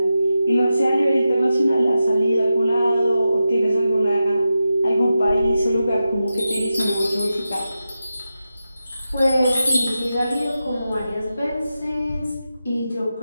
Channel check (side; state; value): both; inverted; correlation -0.90